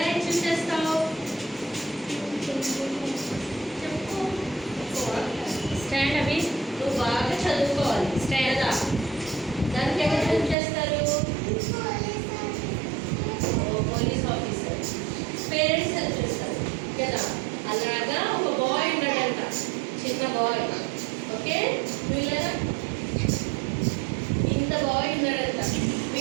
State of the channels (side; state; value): left; drops out; at 10.6 s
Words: ఎక్స్ప్లెయిన్ చేస్తావు? చెప్పు. స్టాండ్ అవి నువ్వు బాగా చదువుకోవాలి. స్టాండ్ దా. దానికి ఎవరు హెల్ప్ చేస్తారు? Police officer. పేరెంట్స్ హెల్ప్ చేస్తారు కదా. అలాగా ఒక బాయ్ ఉన్నాడంట, చిన్న బాయ్. ఓకే, వీళ్ళ ఇంత బాయ్ ఉన్నాడంట.